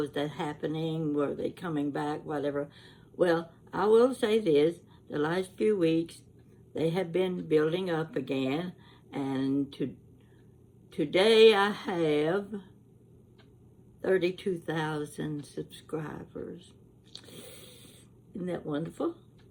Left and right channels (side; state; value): both; identical; correlation 1.00